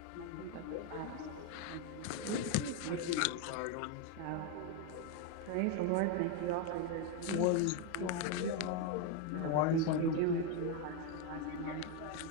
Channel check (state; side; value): different; both; correlation 0.02